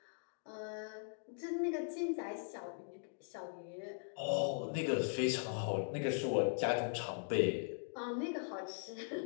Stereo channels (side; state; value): right; silent; digital silence